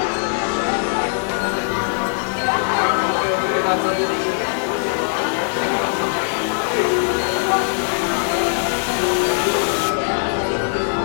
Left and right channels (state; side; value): silent; right; digital silence